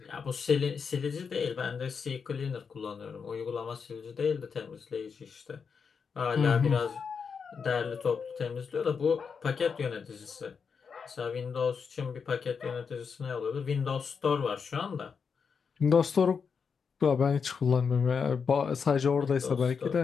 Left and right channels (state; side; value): quieter; right; 6.0 dB